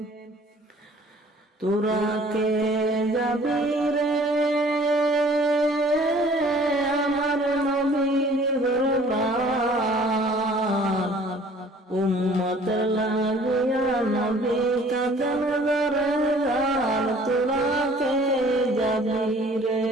তোরা কে যাবি রে আমার নবীর দরবার উম্মত লাগিয়া নবী কাঁদেন যারে তোরা কে যাবি রে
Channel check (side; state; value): both; normal; correlation 0.53